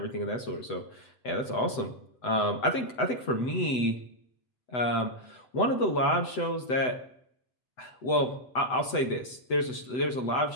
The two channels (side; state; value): right; late; 7.9 ms